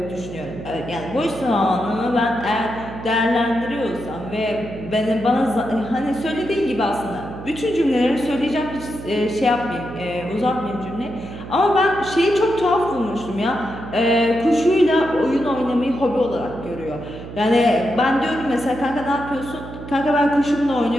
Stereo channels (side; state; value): right; noise; hum, 12 dB below the sound